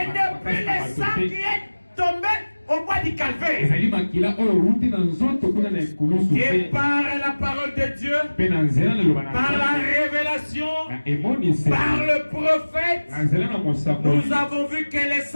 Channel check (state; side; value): inverted; both; correlation -1.00